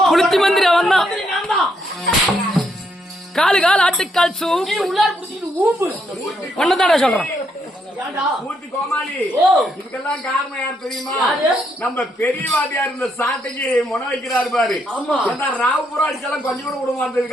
புளுத்தி மந்திரி அவன் தான். காலு கால் ஆட்டுக்கால் சூப் உள்ளார புடிச்சிட்டு ஊம்பு ஒன்னதாடா சொல்றேன். இதுக்கெல்லாம் காரணம் யார் தெரியுமா? நம்ம பெரியவாதியா இருந்த சாட்டைக்கு முனை வைக்கிறாரு பாரு. ராவுபுரம் அடிச்செல்லாம் கொஞ்சம் கூட விட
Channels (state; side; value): normal; both; correlation 0.76